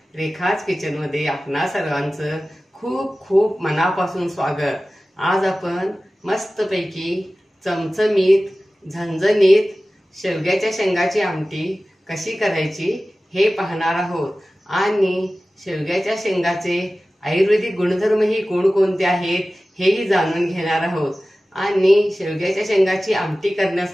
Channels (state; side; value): normal; both; correlation 0.96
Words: रेखाच kitchen मध्ये आपणा सर्वांचं खूप खूप मनापासून स्वागत. आज आपण मस्तपैकी चमचमीत झणझणीत शेवग्याच्या शेंगाची आमटी कशी करायची हे पाहणार आहोत आणि शेवग्याच्या शेंगाचे आयुर्वेदिक गुणधर्मही कोणकोणते आहेत हेही जाणून घेणार आहोत आणि शेवग्याच्या शेंगाची आमटी